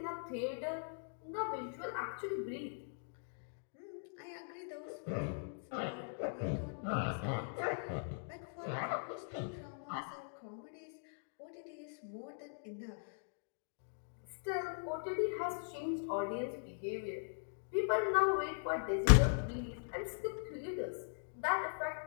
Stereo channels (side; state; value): right; silent; digital silence